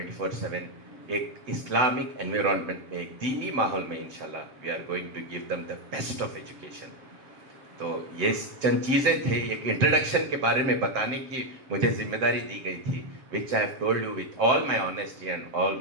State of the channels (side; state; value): left; late; 7.8 ms